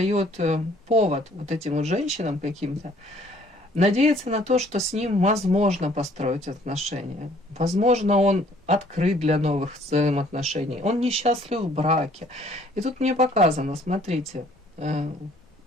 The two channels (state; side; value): normal; both; correlation 0.59